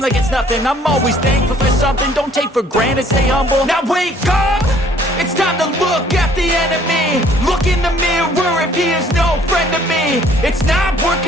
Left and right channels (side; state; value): both; normal; correlation 0.59